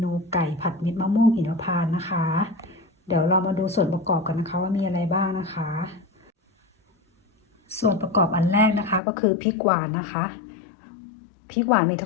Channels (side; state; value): right; drops out; at 9.0 s